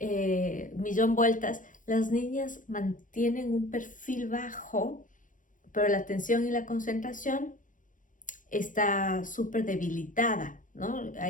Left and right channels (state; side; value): late; right; 0.38 ms